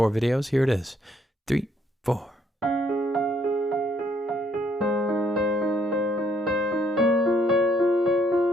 videos. Here it is. 3, 4.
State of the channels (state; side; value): normal; both; correlation 0.68